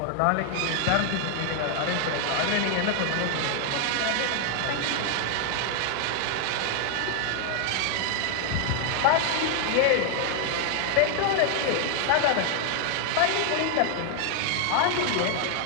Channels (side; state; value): both; different; correlation 0.00